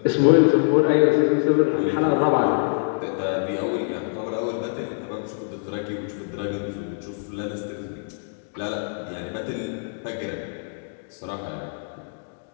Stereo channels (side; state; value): right; silent; digital silence